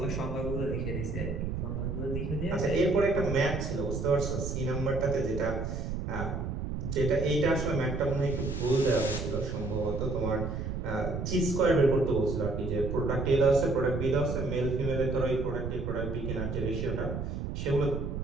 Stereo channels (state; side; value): noise; right; rumble, 4 dB below the sound